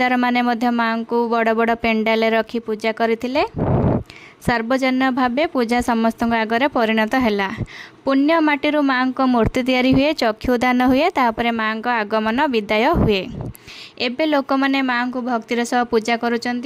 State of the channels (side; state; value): both; identical; correlation 1.00